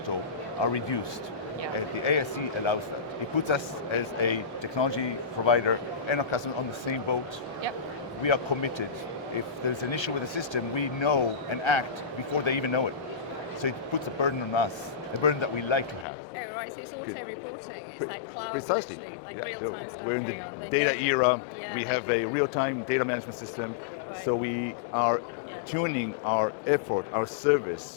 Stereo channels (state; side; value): drops out; right; at 16.1 s